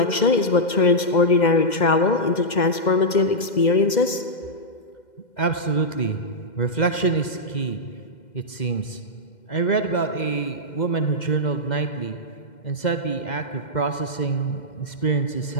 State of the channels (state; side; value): late; right; 2.1 ms